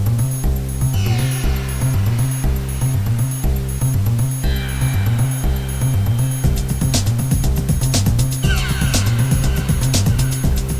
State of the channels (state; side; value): identical; both; correlation 1.00